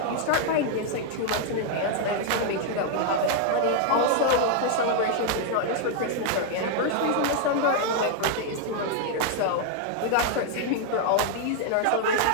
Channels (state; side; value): different; both; correlation 0.00